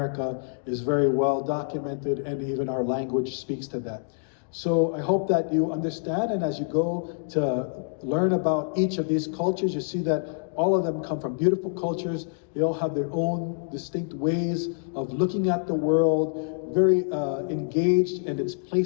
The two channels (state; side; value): silent; right; digital silence